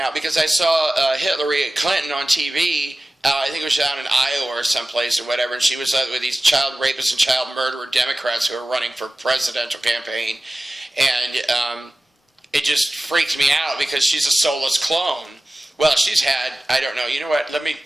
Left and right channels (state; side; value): normal; both; correlation 0.97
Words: because I saw Hillary Clinton on TV. I think it was down in Iowa or someplace or whatever, and she was with these child rapists and child murderer Democrats who are running for presidential campaign, and it just freaked me out because she's a soulless clone. Well, she's had, I don't know, you know what, let me